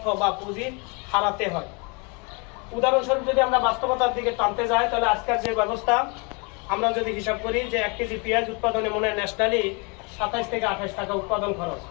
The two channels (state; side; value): quieter; right; 32.1 dB